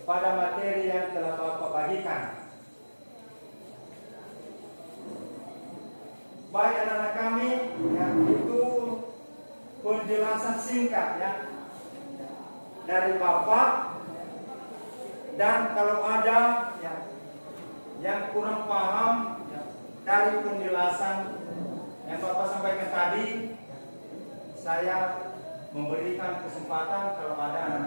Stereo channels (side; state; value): both; inverted; correlation -1.00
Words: pada materi yang telah Bapak bagikan. Baik anak-anak kami, yang itu penjelasan singkat ya dari Bapak. Dan kalau ada ya, yang kurang paham ya, dari penjelasan yang Bapak sampaikan tadi, saya memberikan kesempatan kalau ada